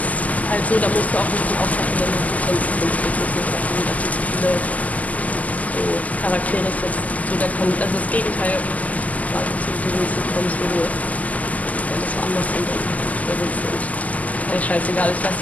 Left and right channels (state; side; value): late; right; 0.076 ms